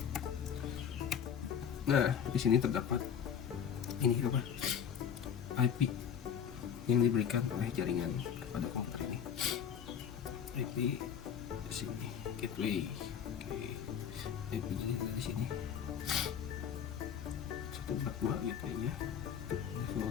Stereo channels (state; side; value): quieter; right; 8.0 dB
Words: Nah, di sini terdapat ini apa? IP yang diberikan oleh jaringan kepada komputer ini. IP di sini, gateway. Oke. IP di sini. 142 gateway-nya.